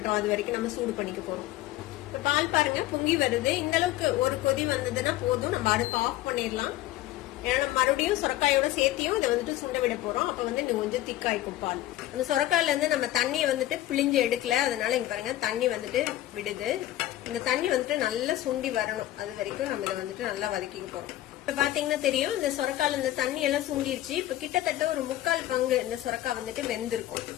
அது வரைக்கும் நம்ம சூடு பண்ணிக்க போறோம். இப்ப பால் பாருங்க பொங்கி வருது. இந்த அளவுக்கு ஒரு கொதி வந்ததுன்னா போதும், நம்ம அடுப்பு ஆஃப் பண்ணிடலாம். ஏன்னா மறுபடியும் சொரக்காயோட சேர்த்தியும் இதை வந்துட்டு சுண்ட விட போறோம். அப்ப வந்து இன்னும் கொஞ்சம் திக்காய்க்கும் பால். அந்த சொரக்காயில இருந்து நம்ம தண்ணியை வந்துட்டு பிழிஞ்சு எடுக்கல, அதனால இங்க பாருங்க தண்ணி வந்துட்டு விடுது. இந்த தண்ணி வந்துட்டு நல்லா சுண்டி வரணும், அது வரைக்கும் நம்ம இதை வந்துட்டு நல்லா வதக்கிக்க போறோம். இப்ப பாத்தீங்கன்னா தெரியும், இந்த சொரக்கால இந்த தண்ணி எல்லாம் சுண்டிருச்சு. இப்ப கிட்டத்தட்ட ஒரு 3/4 பங்கு இந்த சொரக்காய் வந்துட்டு வெந்திருக்கும்.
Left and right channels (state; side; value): quieter; right; 14.8 dB